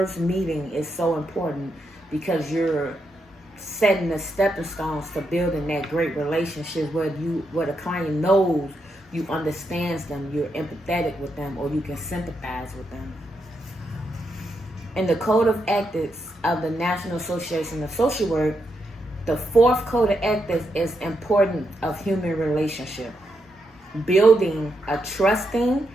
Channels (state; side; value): normal; both; correlation 0.82